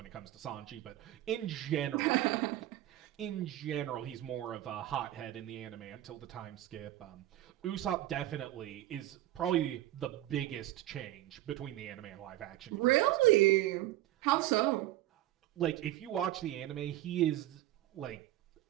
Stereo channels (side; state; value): left; quieter; 15.0 dB